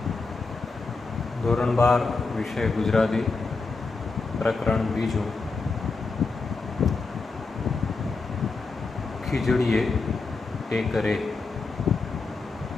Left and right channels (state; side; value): quieter; right; 4.1 dB